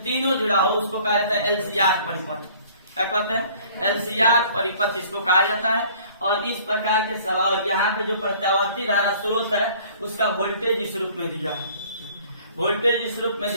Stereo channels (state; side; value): inverted; both; correlation -0.53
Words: तीनों जुड़ा हो उसको कहा जाता है एलसीआर परिपथ। क्या कहते हैं? एलसीआर परिपथ इसको कहा जाता है। और इस प्रकार के सवाल यहाँ पे जो प्रत्यावर्ती धारा स्रोत है उसका वोल्टेज इस रूप में दिया है, वोल्टेज इस रूप में